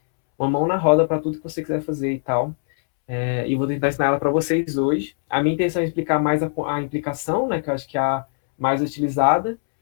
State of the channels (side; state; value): right; silent; 65 dB below the other